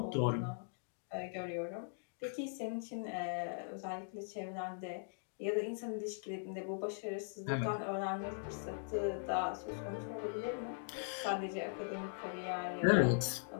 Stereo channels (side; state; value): right; silent; digital silence